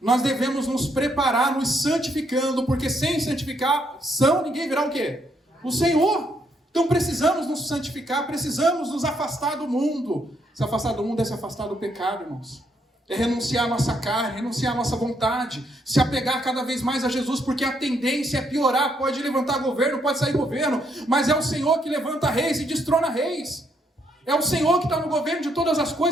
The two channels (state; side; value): normal; both; correlation 0.74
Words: devemos nos preparar, nos santificando, porque sem santificação ninguém virá o quê? O Senhor. Então precisamos nos santificar, precisamos nos afastar do mundo. Se afastar do mundo é se afastar do pecado, irmãos. É renunciar à nossa carne, renunciar à nossa vontade, se apegar cada vez mais a Jesus, porque a tendência é piorar. Pode levantar governo, pode sair governo, mas é o Senhor que levanta reis e destrona reis. É o Senhor que está no governo de todas as